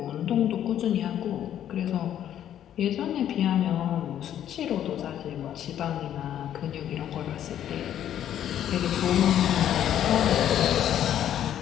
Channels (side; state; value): right; quieter; 10.7 dB